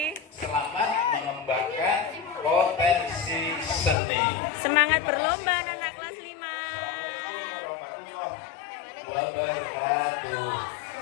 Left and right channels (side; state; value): right; drops out; at 4.0 s